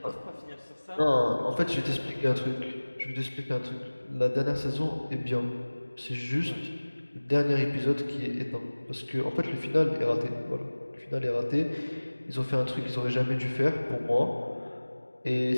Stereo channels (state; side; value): inverted; both; correlation -1.00